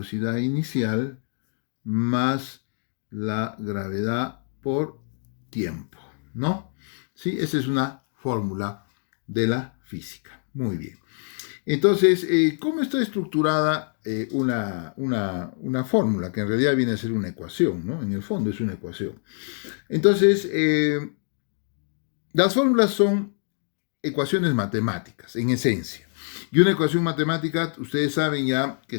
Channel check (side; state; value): right; silent; 57 dB below the other